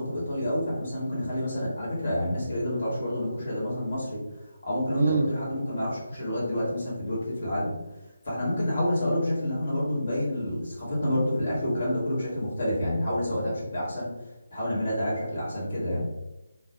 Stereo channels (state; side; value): inverted; both; correlation -0.86